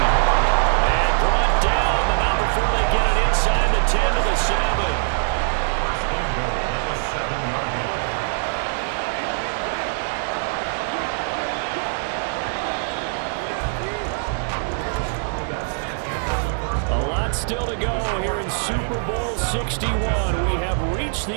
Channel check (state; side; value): silent; left; digital silence